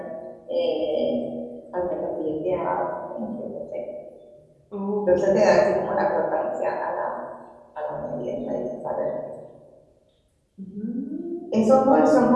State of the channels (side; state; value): both; identical; correlation 1.00